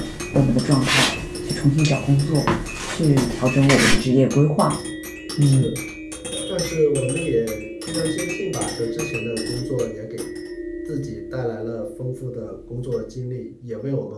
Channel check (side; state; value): both; identical; correlation 1.00